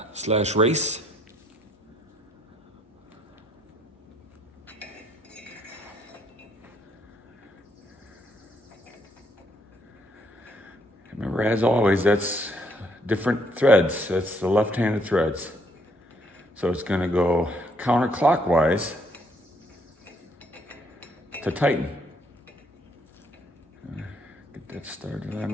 / race. Remember, as always, that's different threads. That's the left-handed threads. So it's going to go counterclockwise to tighten. Get that started on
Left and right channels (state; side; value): normal; both; correlation 0.69